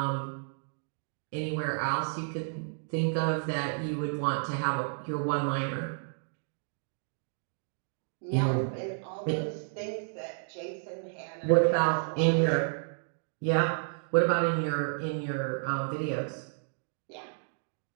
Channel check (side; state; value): left; silent; digital silence